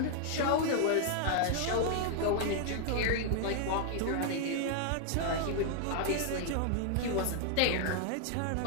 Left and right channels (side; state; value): both; different; correlation 0.00